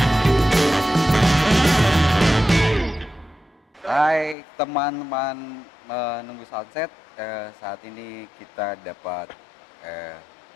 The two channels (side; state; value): right; drops out; at 4.4 s